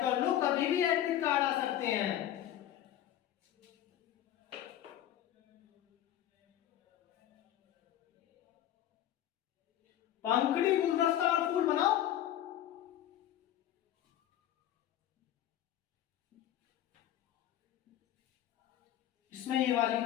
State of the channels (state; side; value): quieter; right; 11.9 dB